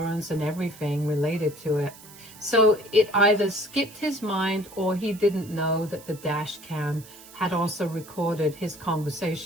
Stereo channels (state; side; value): noise; right; hiss, 19 dB below the sound